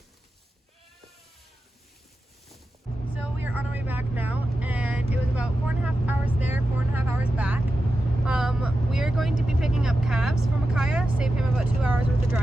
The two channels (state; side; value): normal; both; correlation 0.91